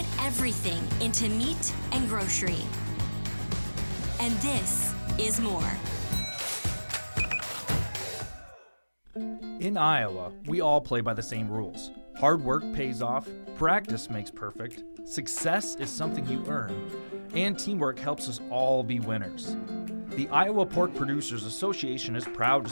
everything into meat and grocery. And this is more. In Iowa, we all play by the same rules. Hard work pays off, practice makes perfect, success is something you earn, and teamwork helps us all be winners. The Iowa Pork Producers Association is proud to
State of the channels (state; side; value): inverted; both; correlation -1.00